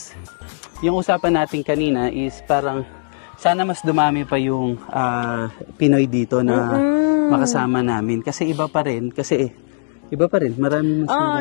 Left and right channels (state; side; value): silent; right; digital silence